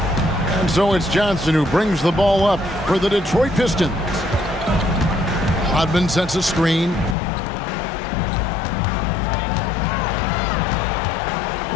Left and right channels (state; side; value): drops out; right; at 7.2 s